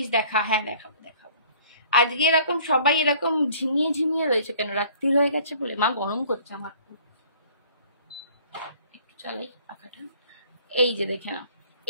দেখা, হ্যাঁ দেখাবো দেখাবো। আজকে এরকম সবাই এরকম ঝিমিয়ে ঝিমিয়ে রয়েছে কেন? রাত্রি হয়ে গেছে বলে? মা গরম করছে আমার খুব, একটু চালাই পাখাটা। এই যে দেখে নাও,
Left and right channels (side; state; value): both; inverted; correlation -0.54